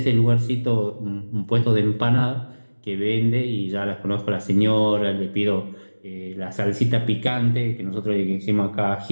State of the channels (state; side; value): inverted; both; correlation -1.00